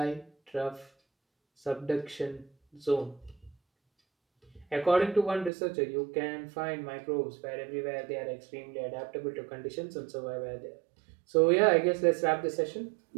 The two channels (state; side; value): drops out; left; at 5.5 s